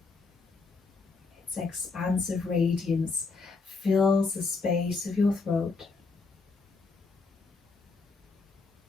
Its expansive radiance fills the space of your throat.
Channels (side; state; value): right; quieter; 4.2 dB